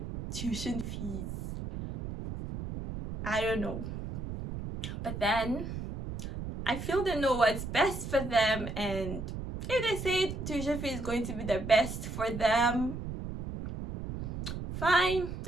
tuition fees. I don't know. But then I feel they know what's best for them, and if they say tuition fee is going to be the best for them, fine.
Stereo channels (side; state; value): right; noise; rumble, 7 dB below the sound